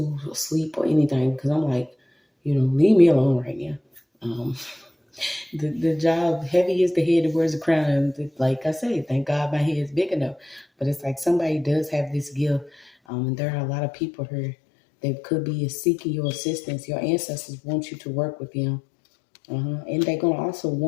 sleep or anything, because I'm like, leave me alone right now. Um, the job, heavy is the head that wears the crown. And like I say, thank God my head is big enough. But it's like somebody does have this gift. And there are a lot of people here that could be seeking your assistance. Your ancestors want you to work with them. And they're going to also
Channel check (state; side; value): drops out; right; at 12.9 s